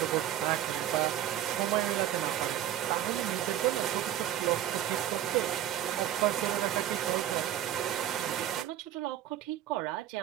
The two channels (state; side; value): quieter; left; 11.8 dB